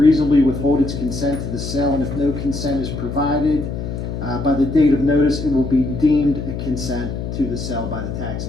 withhold its consent to the sale, and if no consent is provided by the date of notice, it will be deemed a consent to the sale by the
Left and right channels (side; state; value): left; noise; hum, 6 dB below the sound